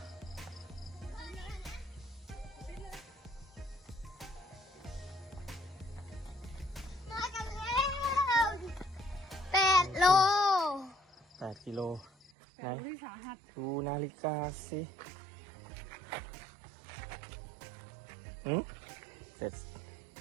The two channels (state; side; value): drops out; left; at 12.3 s